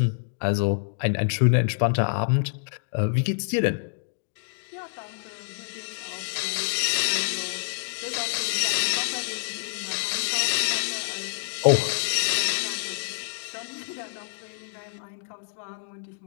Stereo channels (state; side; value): silent; right; digital silence